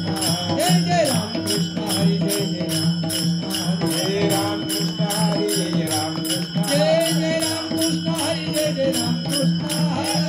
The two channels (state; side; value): identical; both; correlation 1.00